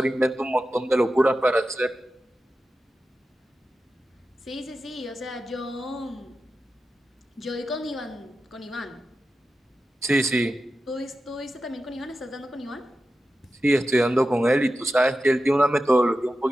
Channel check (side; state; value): both; normal; correlation 0.92